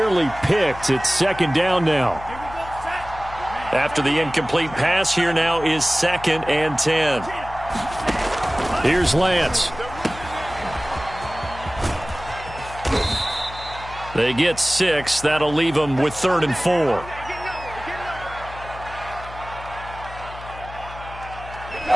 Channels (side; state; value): left; noise; hum, 14 dB below the sound